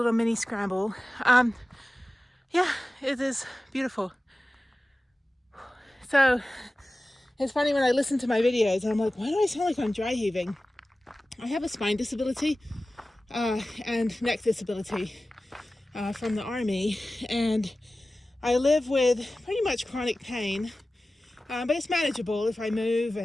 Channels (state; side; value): normal; both; correlation 0.96